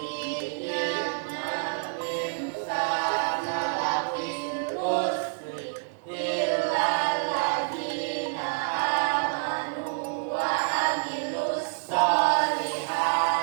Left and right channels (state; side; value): silent; left; digital silence